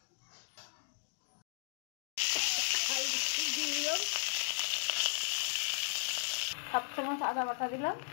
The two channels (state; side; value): silent; right; 54 dB below the other